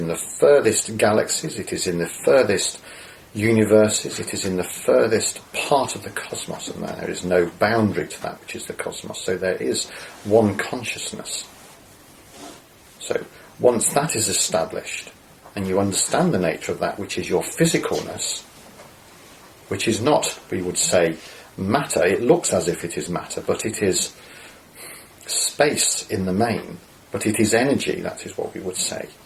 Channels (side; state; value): both; identical; correlation 1.00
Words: the furthest galaxies, it is in the furthest universes, it is in the furthest part of the cosmos, and there is no boundary to that which is the cosmos. So there is one consciousness. So once that is established, and you understand the nature of that which is your physicalness, which is not, we would say, matter. It looks as if it is matter, but it is space in the main, but it is energy, that is what we would say.